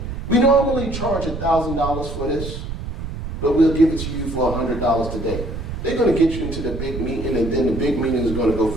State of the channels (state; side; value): noise; right; rumble, 7 dB below the sound